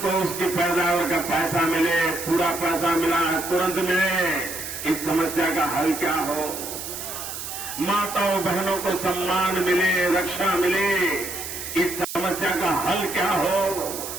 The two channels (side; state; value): right; noise; hiss, 8 dB below the sound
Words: उसकी पैदावार का पैसा मिले, पूरा पैसा मिला तुरंत मिले, इस समस्या का हल क्या हो, माताओं बहनों को सम्मान मिले, रक्षा मिले, इस समस्या का हल क्या हो।